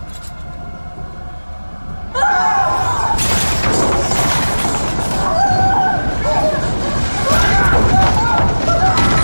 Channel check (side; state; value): both; inverted; correlation -1.00